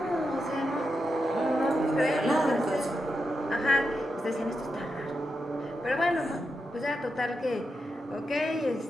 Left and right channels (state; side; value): normal; both; correlation 0.87